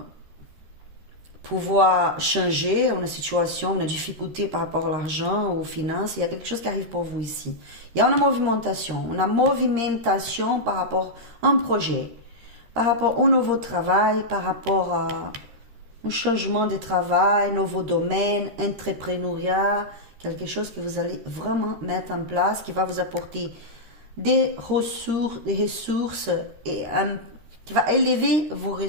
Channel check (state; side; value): late; left; 13 ms